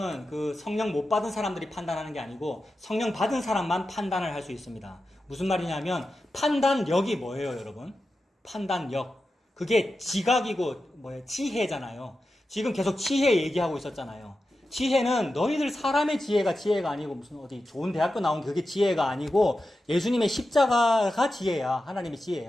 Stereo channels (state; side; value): normal; both; correlation 0.91